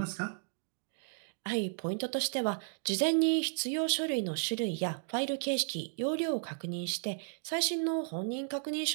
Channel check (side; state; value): left; silent; digital silence